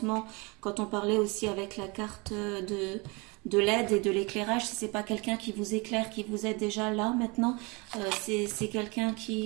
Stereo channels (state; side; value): quieter; left; 28.2 dB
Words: quand on parlait aussi avec la carte de l'aide et de l'éclairage, si c'est pas quelqu'un qui vous éclaire, qui vous aide déjà là maintenant, c'est quelqu'un